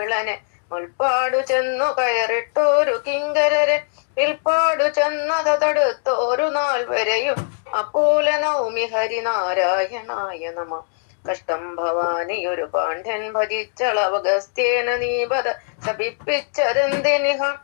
മുൽപ്പാടു ചെന്നു കയറിട്ടോരു കിങ്കരരെ വിൽപ്പാടു ചെന്നത് തടുത്തോരു നാൾ വരെയും അപ്പോല നൗമി ഹരിനാരായണായ നമ. കഷ്ടം ഭവാനിയൊരു പാണ്ഡ്യൻ ഭജിച്ചളവഗസ്ത്യേന നീപത ശപിപ്പിച്ചതെന്തിനിഹ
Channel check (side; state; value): right; silent; digital silence